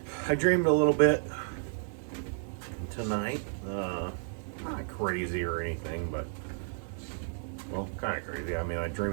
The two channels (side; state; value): left; silent; digital silence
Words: I dreamed a little bit tonight. Not crazy or anything, but, well, kind of crazy. I mean, I